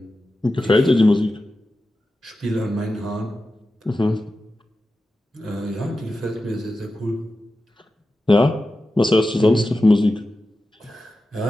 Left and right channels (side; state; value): both; normal; correlation 0.92